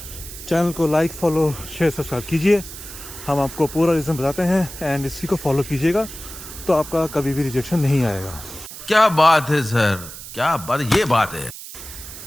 चैनल को लाइक, फॉलो, शेयर, सब्सक्राइब कीजिए। हम आपको पूरा रीज़न बताते हैं एंड इसी को फॉलो कीजिएगा तो आपका कभी भी रिजेक्शन नहीं आएगा। क्या बात है सर, क्या बात, ये बात है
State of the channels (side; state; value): right; noise; hiss, 13 dB below the sound